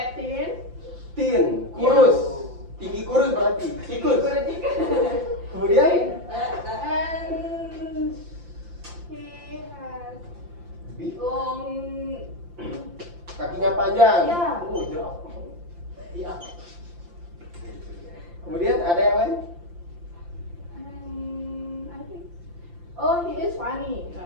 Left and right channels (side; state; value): left; late; 5.8 ms